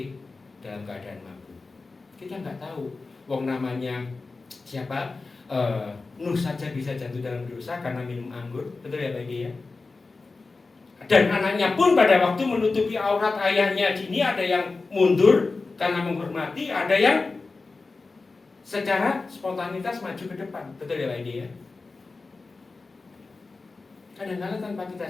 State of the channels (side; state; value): right; quieter; 3.8 dB